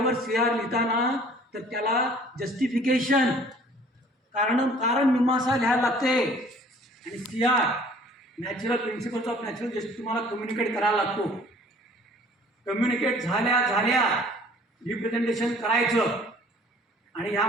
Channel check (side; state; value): both; normal; correlation 0.53